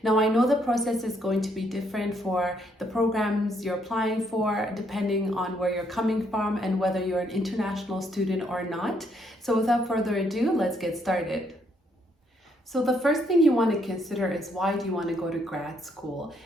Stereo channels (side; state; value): both; normal; correlation 0.72